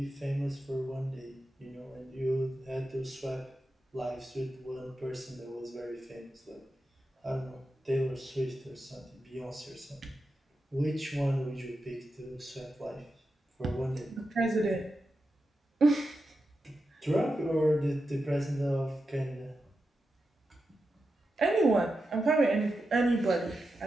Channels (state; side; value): normal; both; correlation 0.89